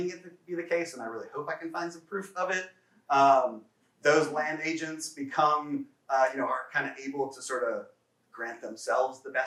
it to be the case, and I really hope I can find some proof of it. Those land agents become, are kind of able to sort of grant themselves the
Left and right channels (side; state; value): both; identical; correlation 1.00